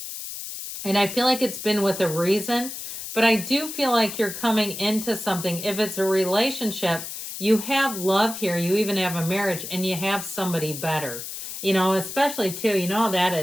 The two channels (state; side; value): noise; left; hiss, 8 dB below the sound